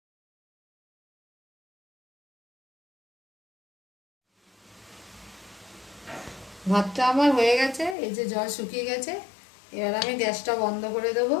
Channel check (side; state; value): right; drops out; at 8.0 s